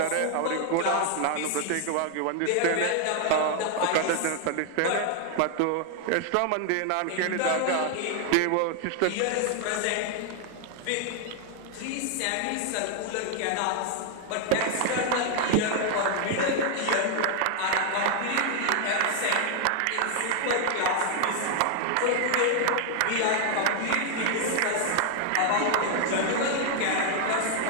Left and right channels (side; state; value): both; different; correlation 0.00